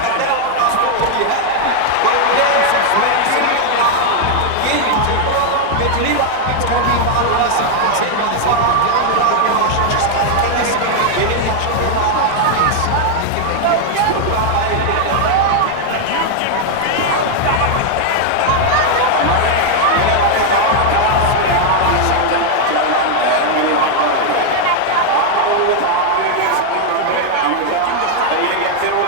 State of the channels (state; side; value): different; both; correlation 0.00